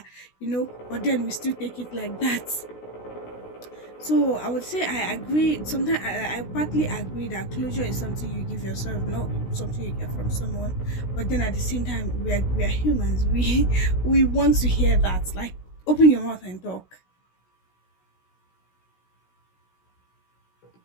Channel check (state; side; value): late; right; 16 ms